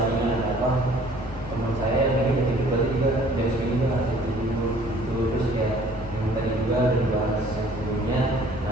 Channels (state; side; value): normal; both; correlation 0.55